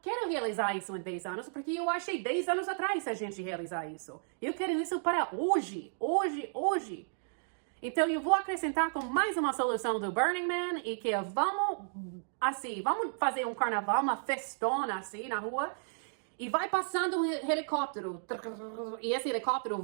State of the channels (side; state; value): left; silent; digital silence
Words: quero realizar isso em 10 anos, porque eu achei 10 anos atrás a gente realizar isso. Eu quero isso para hoje. Hoje. Então eu vou acrescentar com mais uma solução do Burning Man e que vamos fazer um carnaval, uma festona assim na rua e vai passando um helicóptero e esse helicóptero